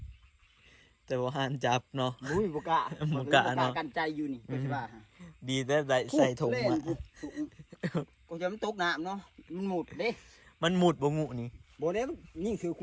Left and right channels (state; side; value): identical; both; correlation 1.00